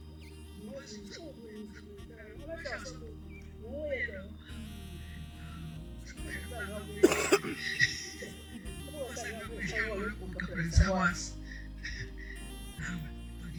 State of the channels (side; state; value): both; identical; correlation 1.00